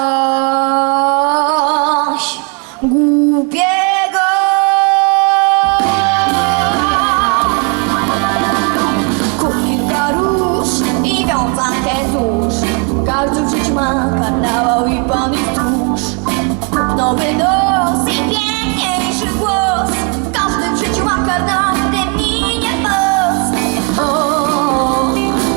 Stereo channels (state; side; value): quieter; left; 36.2 dB